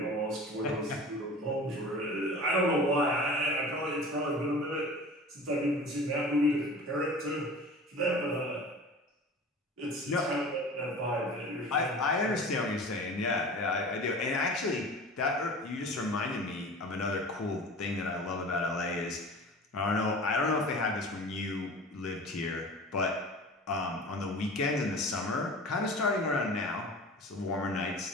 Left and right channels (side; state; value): both; normal; correlation 0.38